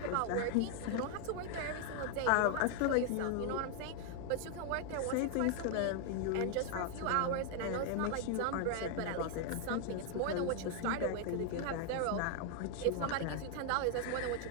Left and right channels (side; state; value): both; different; correlation 0.00